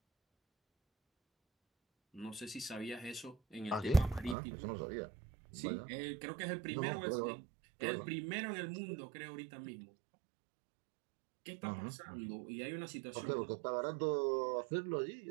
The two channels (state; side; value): drops out; left; at 4.4 s